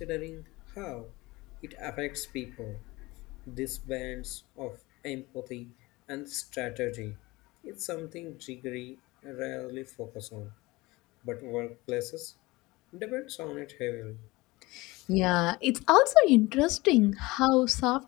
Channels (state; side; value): quieter; right; 21.7 dB